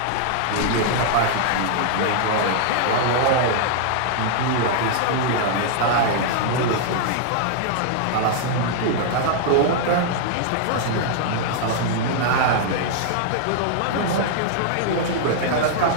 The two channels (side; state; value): both; different; correlation -0.01